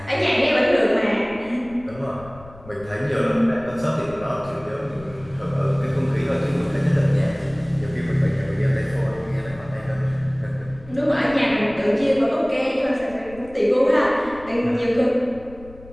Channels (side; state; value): left; noise; rumble, 20 dB below the sound